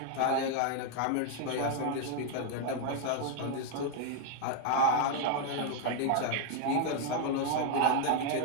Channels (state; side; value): different; both; correlation 0.00